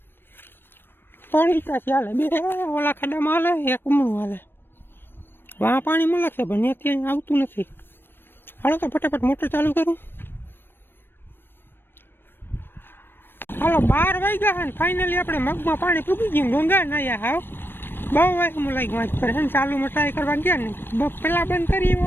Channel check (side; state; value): right; late; 0.099 ms